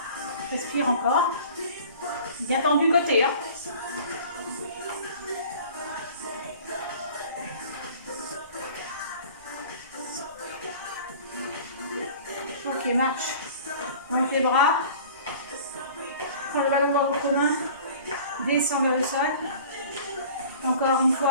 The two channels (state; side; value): inverted; both; correlation -0.44